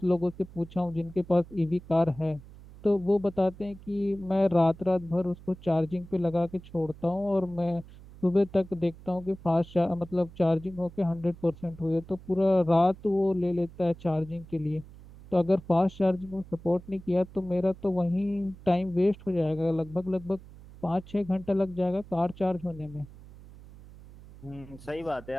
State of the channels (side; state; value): right; noise; hum, 19 dB below the sound